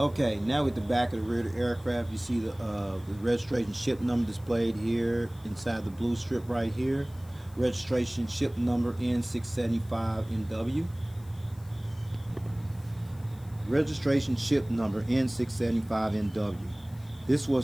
now with the back of the rear of the aircraft, you see the registration ship number displayed here inside the blue strip right here. Registration ship number N675NW. Registration ship number N675NW. This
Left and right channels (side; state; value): left; noise; hiss, 26 dB below the sound